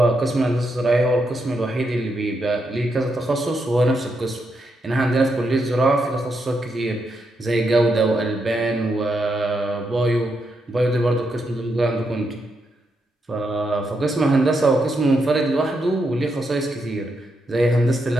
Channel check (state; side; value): normal; both; correlation 0.82